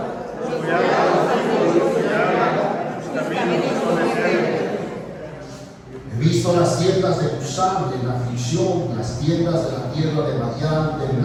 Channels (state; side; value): identical; both; correlation 1.00